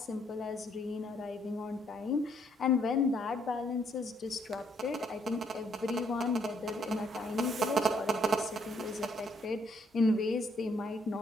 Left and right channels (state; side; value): normal; both; correlation 0.69